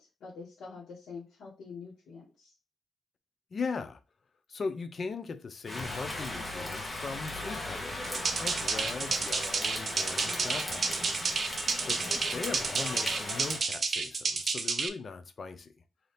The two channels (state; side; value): normal; both; correlation 0.84